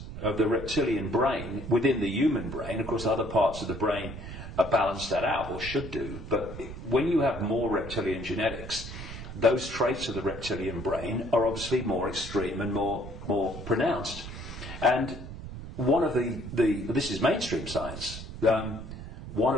of the reptilian brain within the human brain, of course other parts of the brain balance that out, or should do, but when you have more reptilian genetics, those traits of the reptilian brain are obviously more extreme and more pronounced. And one of this is mainstream science, one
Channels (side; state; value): right; noise; rumble, 10 dB below the sound